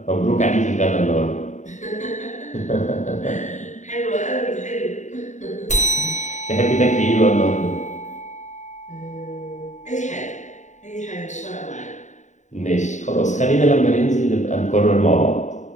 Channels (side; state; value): right; late; 0.35 ms